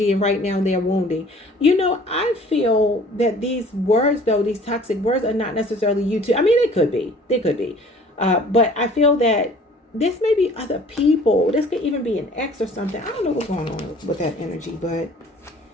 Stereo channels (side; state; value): both; normal; correlation 0.51